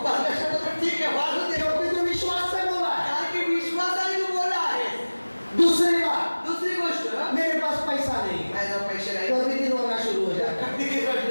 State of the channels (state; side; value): inverted; both; correlation -1.00